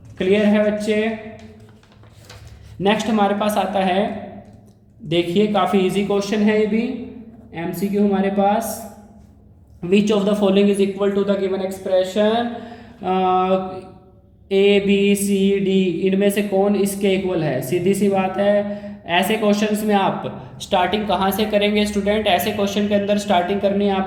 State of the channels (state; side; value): identical; both; correlation 1.00